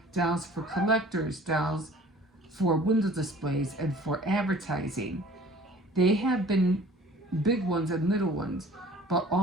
dolls for collectors, dolls for window displays, and for advertising. They have been big ones and little ones, but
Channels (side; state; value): both; normal; correlation 0.49